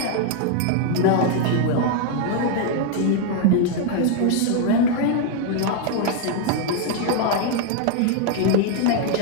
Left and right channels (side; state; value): both; different; correlation 0.00